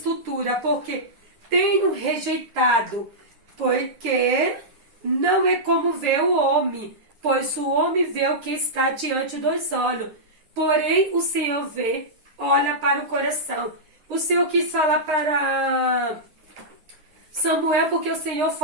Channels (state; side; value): late; left; 9.7 ms